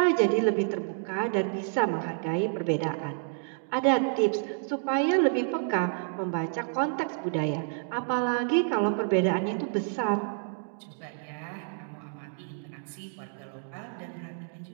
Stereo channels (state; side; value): silent; left; digital silence